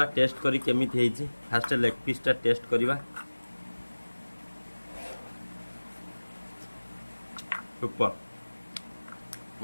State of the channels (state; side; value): inverted; both; correlation -1.00